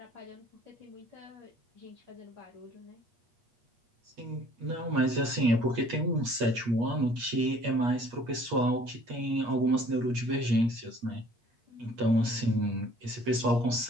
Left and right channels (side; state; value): left; late; 8.4 ms